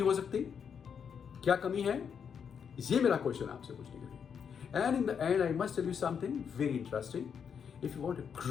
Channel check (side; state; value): right; quieter; 7.2 dB